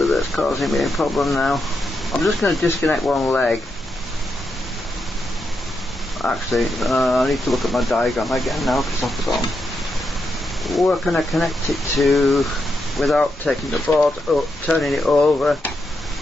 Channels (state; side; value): normal; both; correlation 0.84